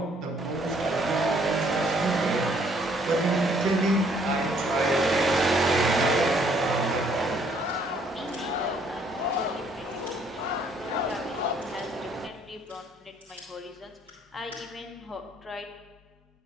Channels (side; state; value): both; normal; correlation 0.65